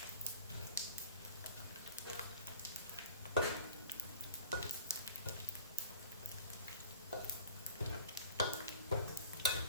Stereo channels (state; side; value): inverted; both; correlation -0.42